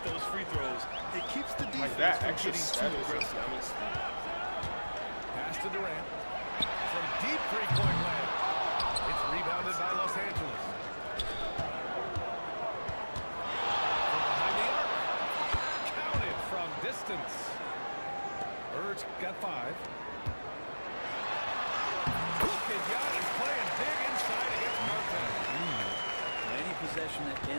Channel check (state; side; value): inverted; both; correlation -1.00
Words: those free throws. It keeps the defense Like that from extra getting step too is aggressive. Pass to Durant. From deep three-point land. It's rebounded by Los Angeles. From behind the arc. Counted from distance. Bird's got 5. Look at Giannis playing big inside against Martin. Any possession that